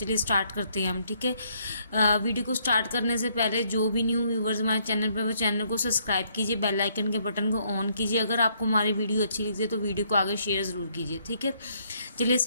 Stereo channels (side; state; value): both; inverted; correlation -0.70